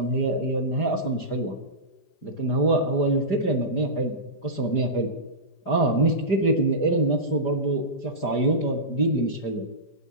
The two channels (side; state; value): right; late; 5.0 ms